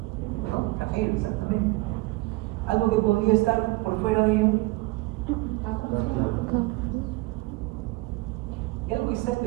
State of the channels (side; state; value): left; quieter; 22.3 dB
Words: ¿No? Flagelo, exactamente. podría estar por fuera de ello? ¿Y algo que está